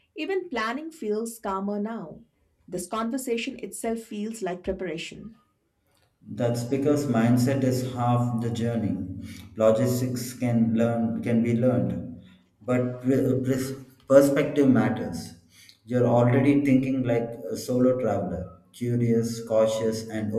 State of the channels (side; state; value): both; identical; correlation 1.00